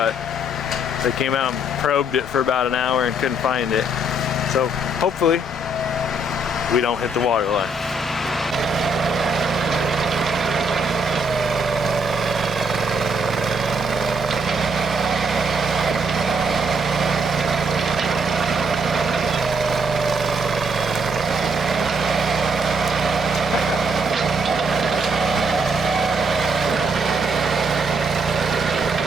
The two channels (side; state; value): both; normal; correlation 0.71